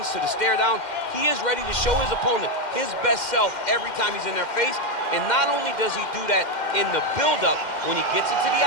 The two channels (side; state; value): right; late; 2.1 ms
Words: to the stare down. He is ready to show his opponent his best self every time he's in their face. And not only does he do that in the build-up, when he gets into the